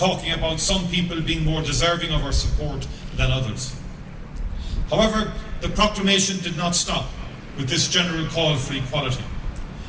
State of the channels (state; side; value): identical; both; correlation 1.00